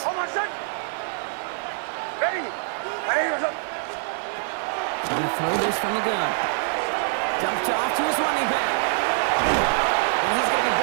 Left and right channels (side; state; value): left; silent; digital silence